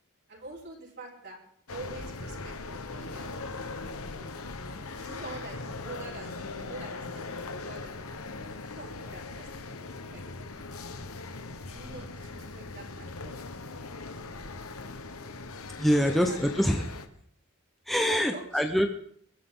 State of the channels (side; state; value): both; normal; correlation 0.73